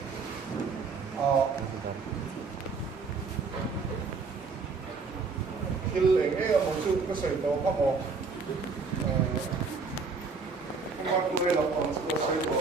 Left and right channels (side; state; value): left; quieter; 4.6 dB